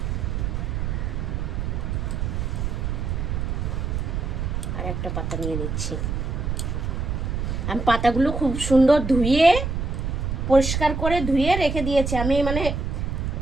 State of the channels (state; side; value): noise; right; rumble, 2 dB below the sound